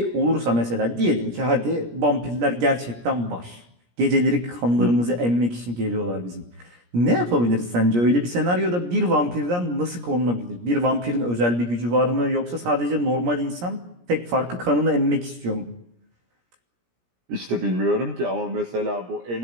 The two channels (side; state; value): left; late; 17 ms